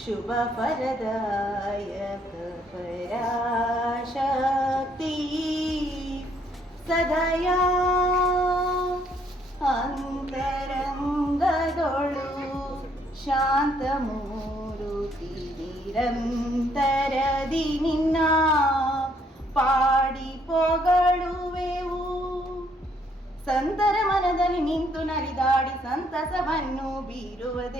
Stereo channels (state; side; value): normal; both; correlation 0.68